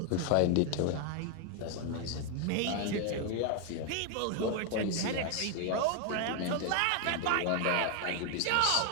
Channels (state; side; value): different; both; correlation 0.01